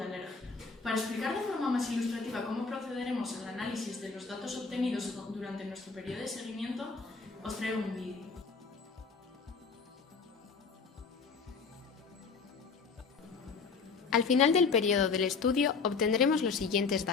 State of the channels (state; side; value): quieter; right; 4.9 dB